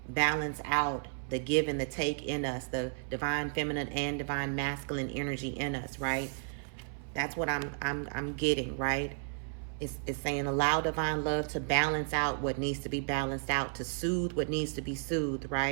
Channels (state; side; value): silent; left; 56 dB below the other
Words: balance out the give and the take in us, the divine feminine and divine masculine energy in us, right? That's what I'm getting, right? It's saying allow divine love to balance out what needs to be balanced out, to soothe what needs to be soothed,